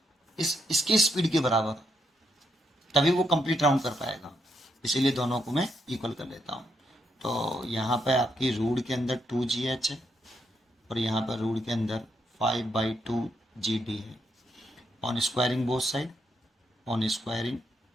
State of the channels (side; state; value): both; normal; correlation 0.78